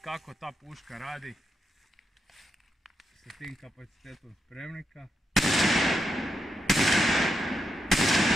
kako ta puška radi sa tim kapacitetom spremnika.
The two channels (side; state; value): both; normal; correlation 0.84